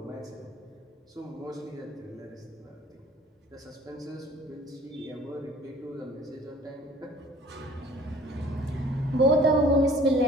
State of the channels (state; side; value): normal; both; correlation 0.51